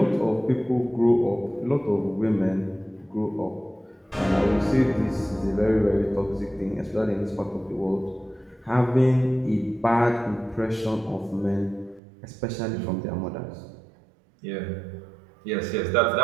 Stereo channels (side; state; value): left; drops out; at 12.0 s